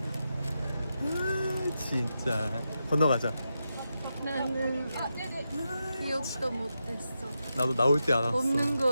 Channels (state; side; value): inverted; both; correlation -0.88